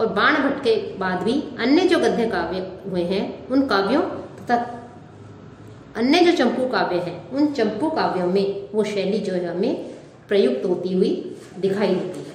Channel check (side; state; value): both; identical; correlation 1.00